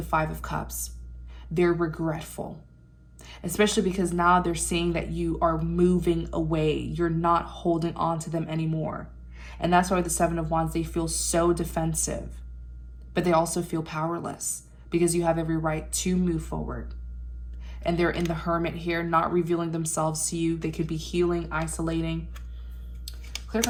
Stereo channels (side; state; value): both; identical; correlation 1.00